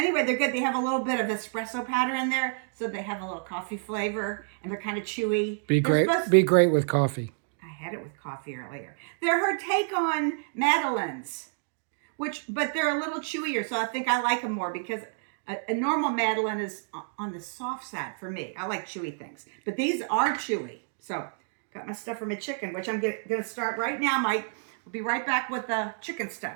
they're good. They have a little bit of espresso powder in there. So they have a little coffee flavor. And they're kind of chewy. Be great with coffee. I had it with coffee earlier. They're her take on Madeleines. But they're a little chewier. So I think I like them more because a normal Madeleine is on the soft side for me. I like chewy things. But these are chewy. So got my stuff for my chicken, which I'm going to start right now, Mike. We'll be right back with the chicken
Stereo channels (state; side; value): silent; left; digital silence